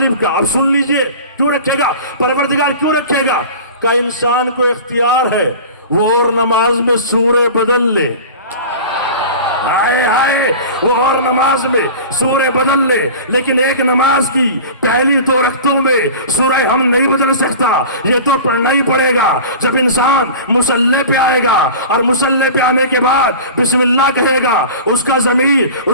کا. اب سن لیجئے کیوں رکھے گا پروردگار، کیوں رکھے گا؟ کہ انسان کو اختیار ہے وہ اور نماز میں سورہ بدل لے. ہائے ہائے، وہ اور نماز میں سورہ بدل لے، لیکن ایک نماز کی پہلی 2 رکعتوں میں سورہ ہم نہیں بدل سکتا. یہ تو پڑھنا ہی پڑے گا. جب انسان مصلی پہ آئے گا اور مصلی پہ آنے کے بعد بسم اللہ کہے گا، اس کا ضمیر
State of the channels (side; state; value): both; inverted; correlation -0.37